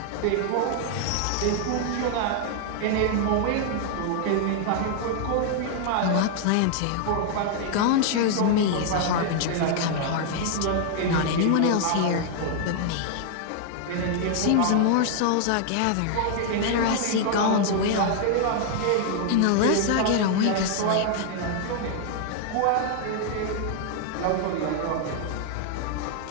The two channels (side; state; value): both; different; correlation 0.00